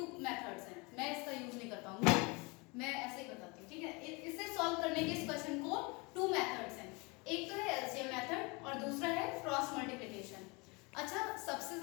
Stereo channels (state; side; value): quieter; right; 27.9 dB